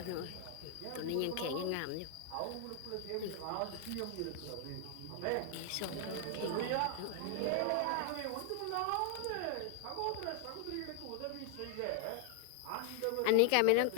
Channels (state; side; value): different; both; correlation 0.00